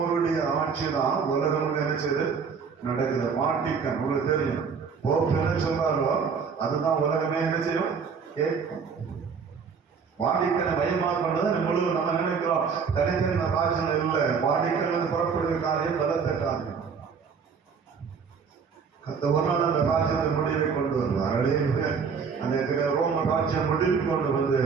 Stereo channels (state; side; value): quieter; left; 5.9 dB